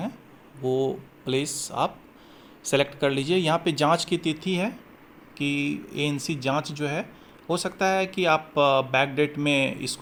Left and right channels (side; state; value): both; identical; correlation 1.00